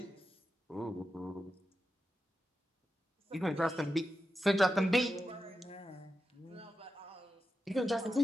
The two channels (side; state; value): both; normal; correlation 0.90